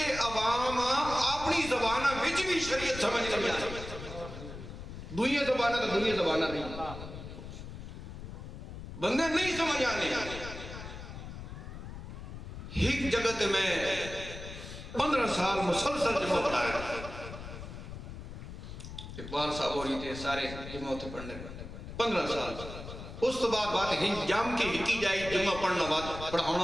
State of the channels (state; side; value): noise; left; rumble, 10 dB below the sound